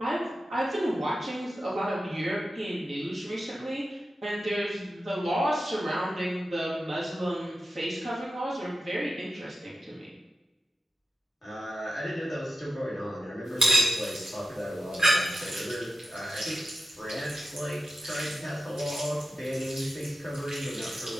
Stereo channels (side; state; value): both; normal; correlation 0.92